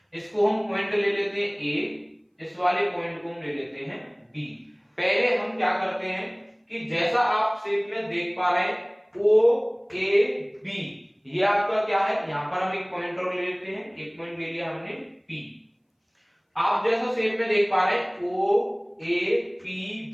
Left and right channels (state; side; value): identical; both; correlation 1.00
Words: इसको हम पॉइंट ले लेते हैं A, इस वाले पॉइंट को हम ले लेते हैं B। पहले हम क्या करते हैं कि जैसा आप शेप में देख पा रहे हैं OAB, ये आपका क्या है, यहां पर हम एक पॉइंट और ले लेते हैं, एक पॉइंट ले लिया हमने P। आप जैसा शेप में देख पा रहे हैं